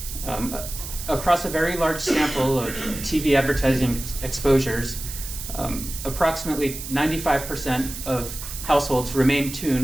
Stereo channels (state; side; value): noise; right; hiss, 9 dB below the sound